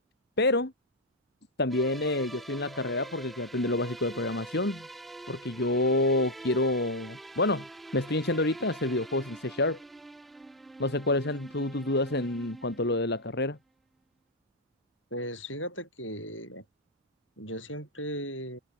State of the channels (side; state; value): both; normal; correlation 0.00